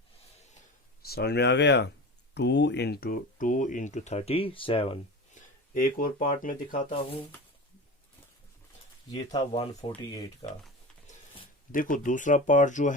समझ में आ गया, 2 इंटू 37। एक और पार्ट में दिखाता हूं, ये था 148 का। देखो दूसरा पार्ट जो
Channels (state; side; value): normal; both; correlation 0.30